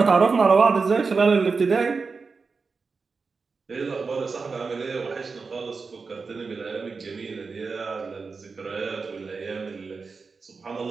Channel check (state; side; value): quieter; left; 4.7 dB